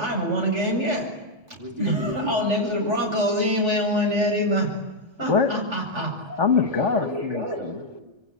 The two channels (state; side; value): late; left; 1.3 ms